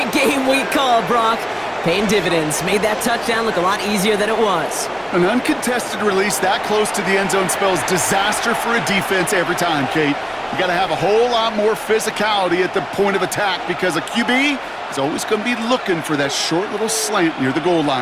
game we call, Brock. Paying dividends. Made that touchdown look a lot easier than it was. An uncontested release that close to the end zone spells disaster for a defense every time, Kate. You got to have a whole lot more physicality at the point of attack because a QB is always going to be looking for that short little slant near the goal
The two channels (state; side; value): identical; both; correlation 1.00